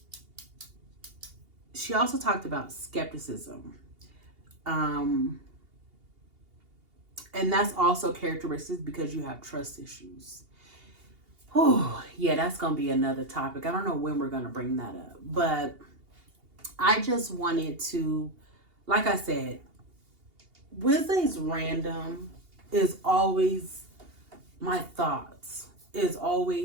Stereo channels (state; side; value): late; left; 2.8 ms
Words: She also talked about skepticism. And that's also characteristics because you have trust issues. Oh, yeah, that's going to be another topic. I don't know when we're going to bring that up, but I just wanted to, like I said, Wednesday's random is always my thoughts, is